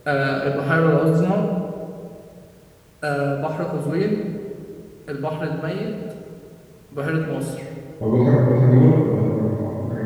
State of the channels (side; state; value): both; identical; correlation 1.00